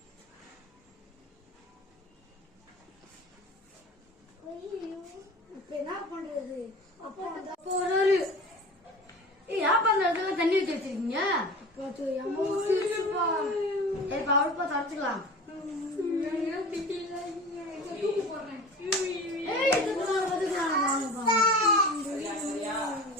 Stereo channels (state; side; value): normal; both; correlation 0.37